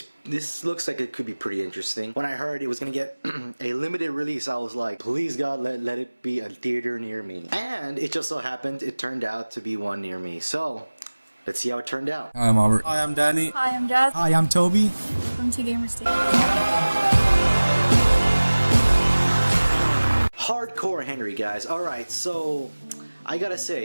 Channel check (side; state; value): both; inverted; correlation -1.00